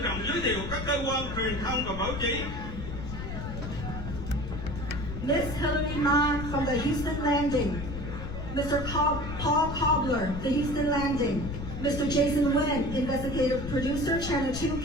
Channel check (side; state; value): left; noise; rumble, 7 dB below the sound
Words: trọng giới thiệu các cơ quan truyền thông và báo chí. Miss Hillary Ma from the Houston Landing. Mr. Paul Cobbler, the Houston Landing. Mr. Jason Nguyen, Investigative Producer, Channel 2